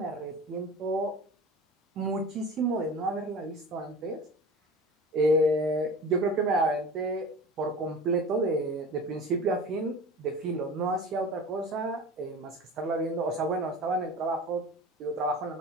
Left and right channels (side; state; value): both; normal; correlation 0.35